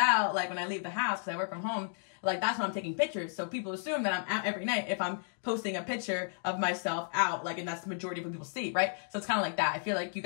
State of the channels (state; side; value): silent; right; digital silence